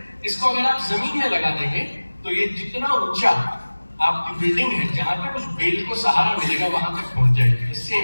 इसको अगर आप जमीन में लगा देंगे तो ये जितना ऊंचा आपकी बिल्डिंग है, जहां तक उस बेल को सहारा मिलेगा वहां तक पहुंच जाएगी।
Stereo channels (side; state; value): both; inverted; correlation -1.00